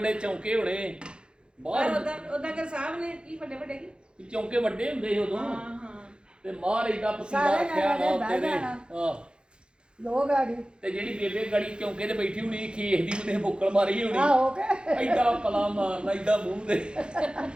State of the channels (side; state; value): left; late; 0.052 ms